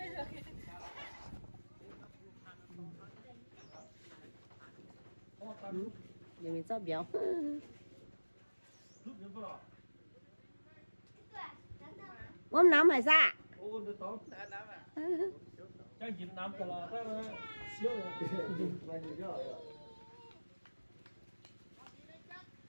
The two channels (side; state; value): both; inverted; correlation -1.00